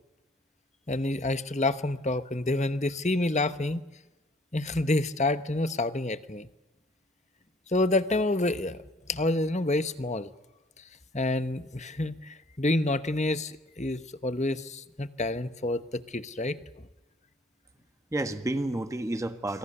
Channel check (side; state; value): both; normal; correlation 0.57